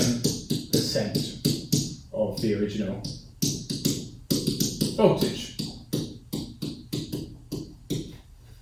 of the original voltage.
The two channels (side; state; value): both; identical; correlation 1.00